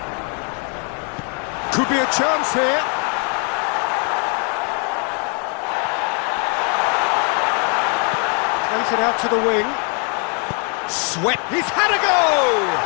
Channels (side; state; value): right; quieter; 38.9 dB